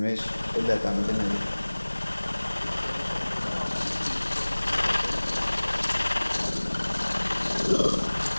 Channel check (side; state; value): both; inverted; correlation -1.00